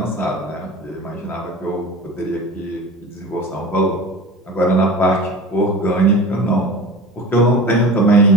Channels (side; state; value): both; normal; correlation 0.35